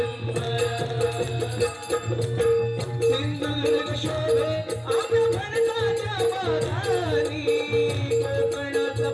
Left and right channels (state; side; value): identical; both; correlation 1.00